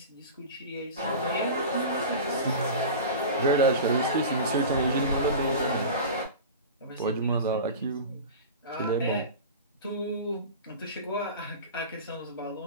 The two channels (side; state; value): both; inverted; correlation -0.32